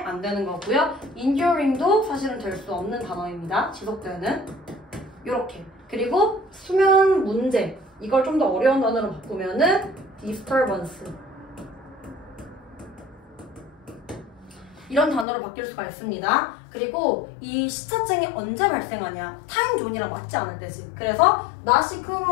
안 되는 거고요. enduring도 사실은 될 수 없는 단어입니다. 지속되는. 요렇게. 그리고 수면 문제. 이걸 좀 더 어려운 단어로 바꾸면은 disturbance. 이런 단어로 바뀔 수가 있습니다. 그리고 이 시차증이 언제 발생하냐? 타임존이랑 맞지 않을 때지. 그래서 not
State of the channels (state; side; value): drops out; right; at 15.2 s